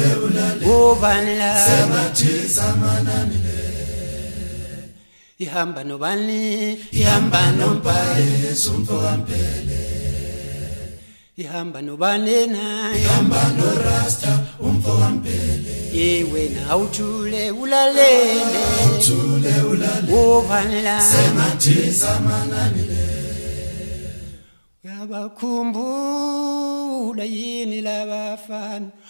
obanela mathisa mananile. Ihamba nobani ihamba nompaye sumfo kampele. Ihamba nobani na ihamba no rasta umfo kampele. Ye wena awuthule ulalele obanela mathisa mananile. Uyabakhumbula yini labafana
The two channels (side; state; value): both; inverted; correlation -1.00